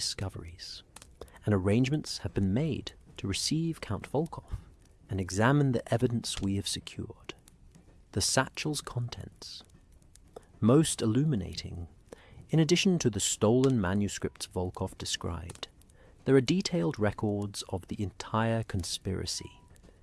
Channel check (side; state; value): both; identical; correlation 1.00